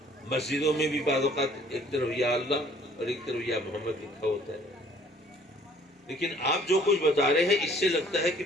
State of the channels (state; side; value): normal; both; correlation 0.57